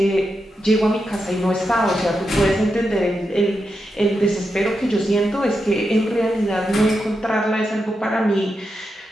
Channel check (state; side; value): normal; both; correlation 0.86